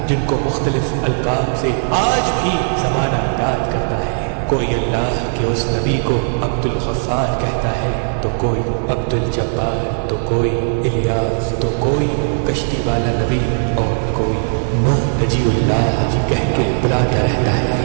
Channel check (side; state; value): left; silent; 68 dB below the other